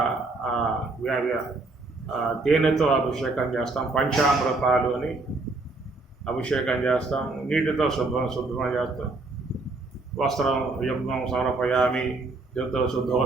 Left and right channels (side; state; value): left; quieter; 3.4 dB